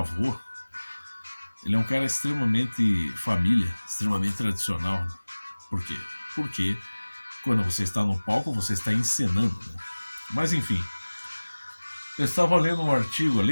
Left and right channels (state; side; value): inverted; both; correlation -1.00